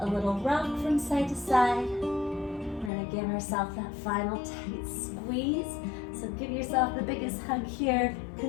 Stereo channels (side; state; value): right; drops out; at 2.9 s